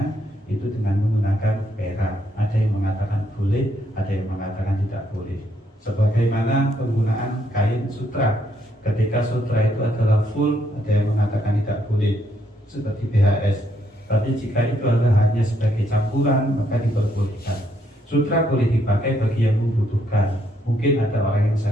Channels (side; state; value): both; normal; correlation 0.73